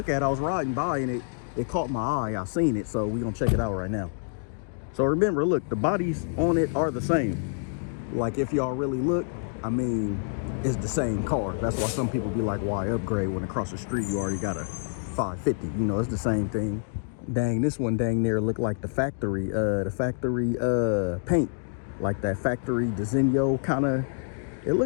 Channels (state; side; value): silent; right; digital silence